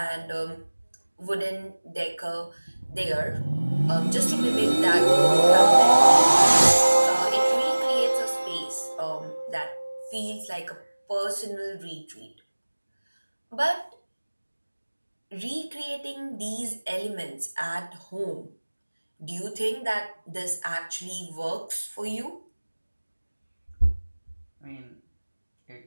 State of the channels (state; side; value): inverted; both; correlation -1.00